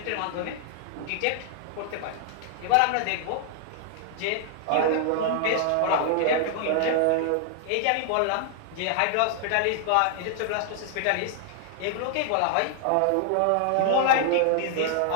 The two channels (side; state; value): both; different; correlation 0.00